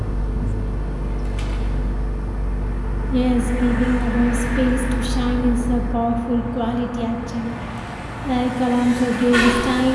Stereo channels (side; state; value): both; identical; correlation 1.00